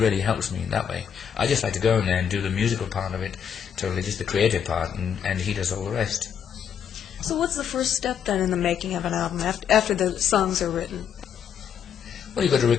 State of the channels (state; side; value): quieter; right; 8.0 dB